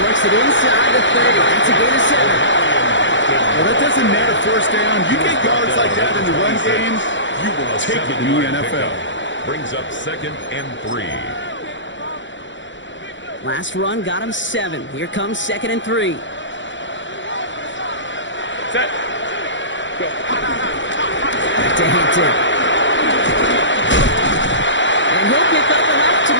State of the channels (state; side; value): late; right; 0.54 ms